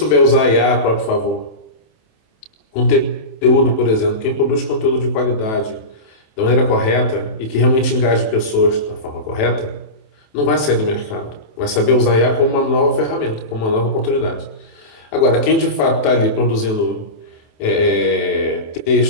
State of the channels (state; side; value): late; right; 27 ms